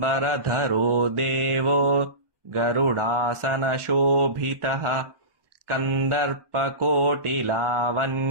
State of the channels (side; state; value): left; late; 1.2 ms